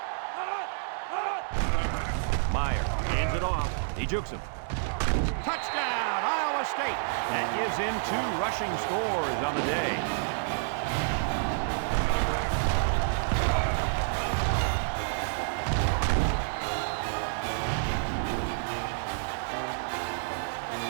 Meyer hands it off. He jukes him. Touchdown, Iowa State. That gives him 2 rushing scores on the day.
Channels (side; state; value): left; silent; 58 dB below the other